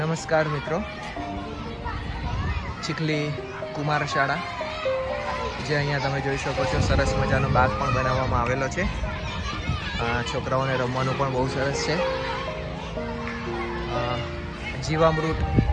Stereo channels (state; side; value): identical; both; correlation 1.00